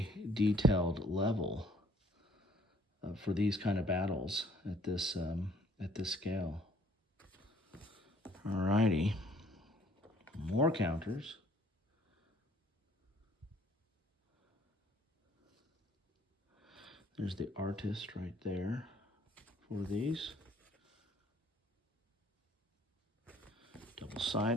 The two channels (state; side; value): normal; both; correlation 0.59